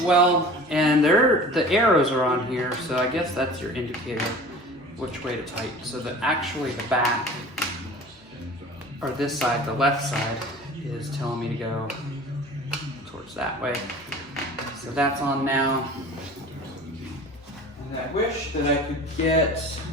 And the arrows are on here, so I guess that's your indicator which way to tighten. So that actually the back, or this side, the left side, is telling me to go towards that way. So that's on now. And I wish that I could get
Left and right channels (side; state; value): both; normal; correlation 0.41